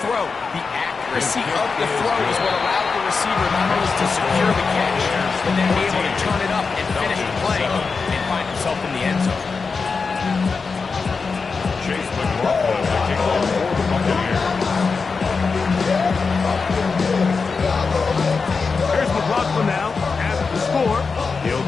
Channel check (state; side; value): quieter; right; 4.8 dB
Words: The accuracy of the throw is what allowed the receiver not only to secure the catch, but then be able to turn it up and finish the play and find himself in the end zone. Chase McLaughlin, the kickoff for the Buccaneers. Here's McLaughlin now at the score. He'll